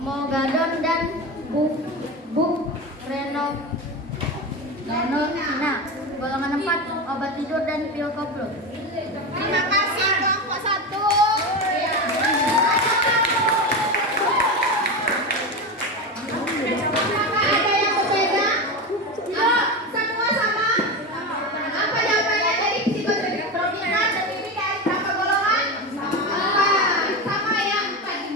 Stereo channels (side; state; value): both; normal; correlation 0.20